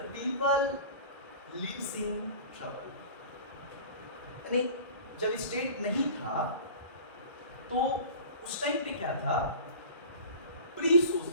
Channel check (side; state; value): both; inverted; correlation -0.39